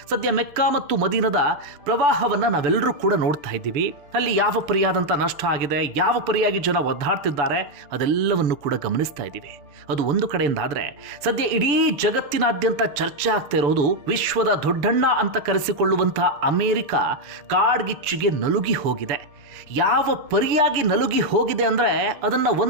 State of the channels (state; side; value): late; left; 6.9 ms